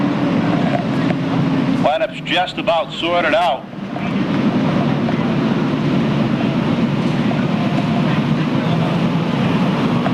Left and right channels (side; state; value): both; identical; correlation 1.00